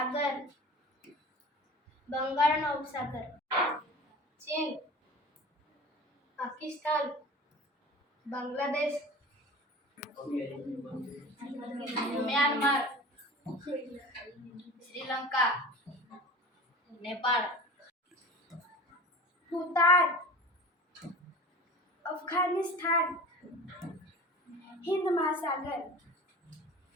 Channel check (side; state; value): both; normal; correlation 0.36